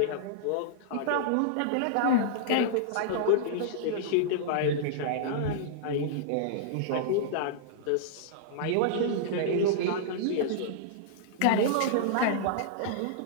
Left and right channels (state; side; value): different; both; correlation -0.02